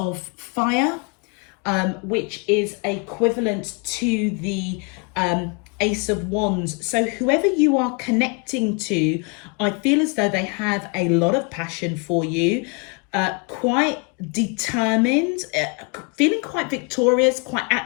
Fire, which is equivalent to the Ace of Wands. So whoever you are connecting to, I feel as though they have a lot of passion for you, quite determined, feeling quite victorious, quite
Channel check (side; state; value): right; quieter; 32.8 dB